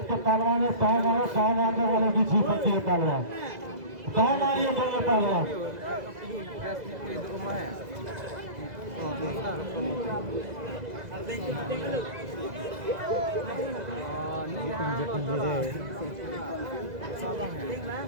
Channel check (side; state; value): left; late; 2.0 ms